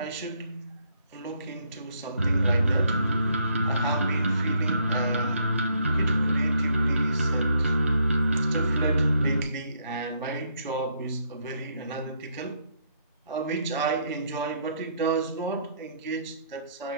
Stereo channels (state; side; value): inverted; both; correlation -0.71